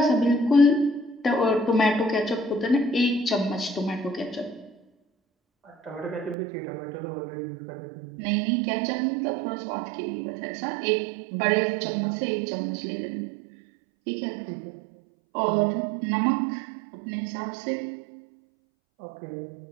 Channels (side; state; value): left; drops out; at 6.4 s